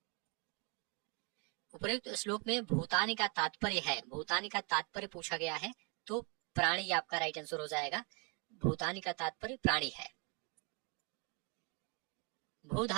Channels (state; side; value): quieter; left; 34.1 dB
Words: उपयुक्त श्लोक में भूतानि का तात्पर्य है, भूतानि का तात्पर्य पूछा गया है, तो प्राणी आपका राइट आंसर हो जाएगा। भूतानि का तात्पर्य प्राणी है। भू